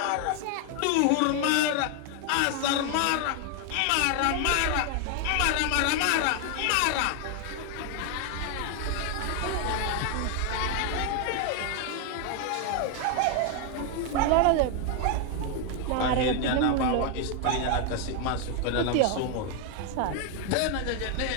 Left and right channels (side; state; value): both; different; correlation 0.00